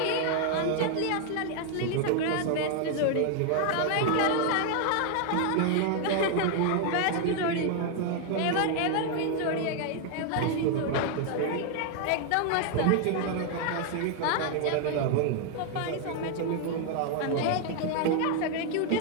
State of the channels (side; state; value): both; different; correlation 0.00